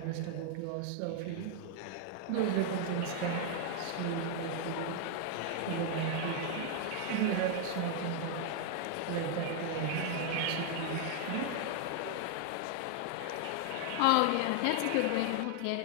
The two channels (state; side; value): different; both; correlation 0.00